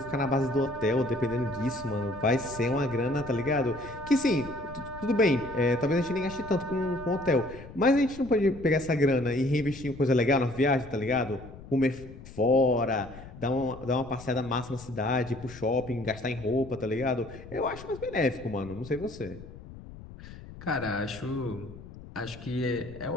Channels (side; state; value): left; noise; rumble, 16 dB below the sound